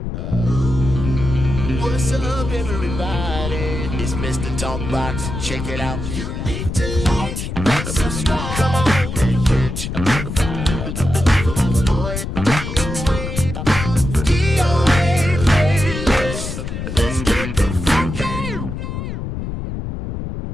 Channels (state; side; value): noise; left; rumble, 5 dB below the sound